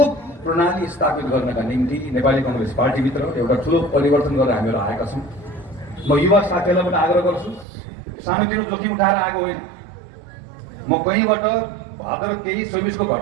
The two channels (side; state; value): left; drops out; at 7.7 s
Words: प्रणाली स्थापित गर्नका निम्ति नेपाली काङ्ग्रेस पार्टीभित्र एउटा ठुलो परिवर्तन गरेर हामीहरू आएका छौँ। म युवा साथीहरूलाई पनि आग्रह गर्छु, सानोतिनो जोखिम उठाएर आएको होइन। म कहीँबाट भाद्र 23-24 को